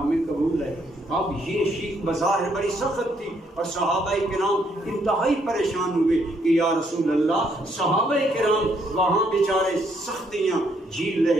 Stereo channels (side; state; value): both; normal; correlation 0.71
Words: ہمیں قبول ہے۔ اب یہ شیخ بظاہر بڑی سخت تھی، اور صحابہ کرام انتہائی پریشان ہوئے کہ یا رسول اللہ، صحابہ کرام وہاں بیچارے سختیاں جھیل